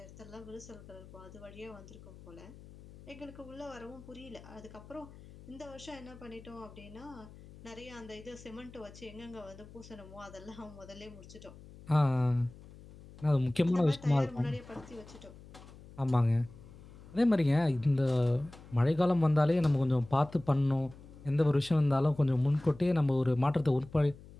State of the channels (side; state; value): left; noise; hum, 19 dB below the sound